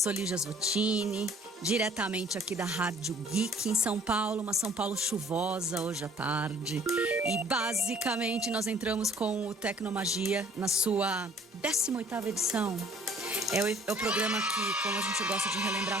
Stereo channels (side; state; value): both; normal; correlation 0.56